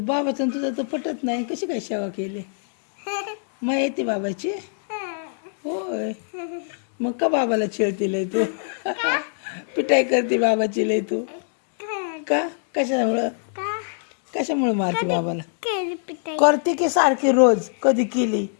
बाबाचं आणि तुझं तर पटत नाही. कशी काय सेवा केली? मग येते बाबाची. होय, मग का बाबाला छेडती लय तू? पिटाई करते बाबाची लय तू का? कशामुळं? का कशामुळे मारते बाबाला? केली पिटाई. करते की सारखी रोज? कधी केली?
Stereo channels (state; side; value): silent; right; digital silence